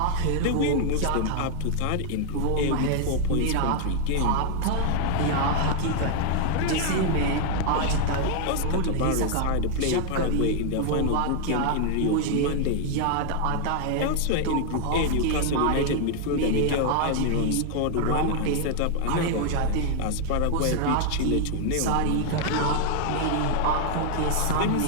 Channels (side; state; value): both; different; correlation 0.00